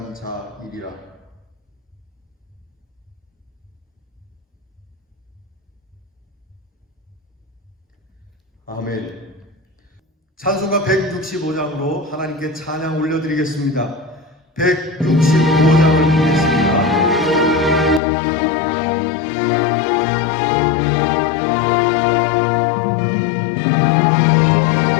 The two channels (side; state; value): right; drops out; at 18.0 s